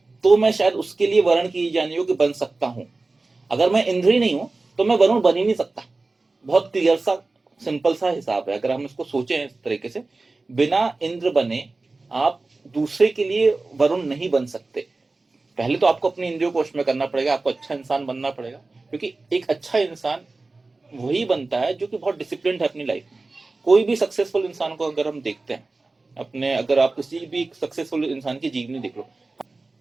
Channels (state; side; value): quieter; left; 3.4 dB